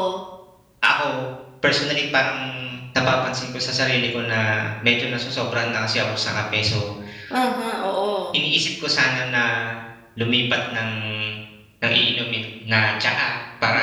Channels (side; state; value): both; identical; correlation 1.00